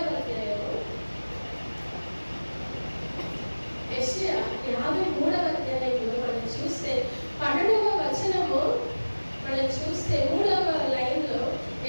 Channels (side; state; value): both; inverted; correlation -1.00